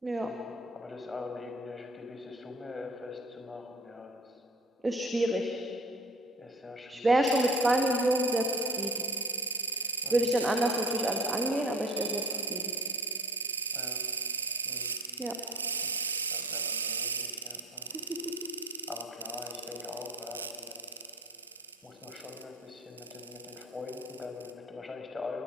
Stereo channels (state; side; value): normal; both; correlation 0.43